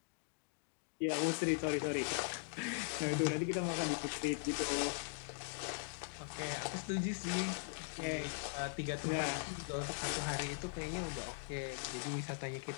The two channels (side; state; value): right; silent; digital silence